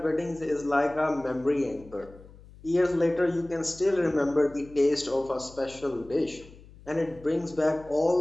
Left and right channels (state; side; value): noise; left; hum, 21 dB below the sound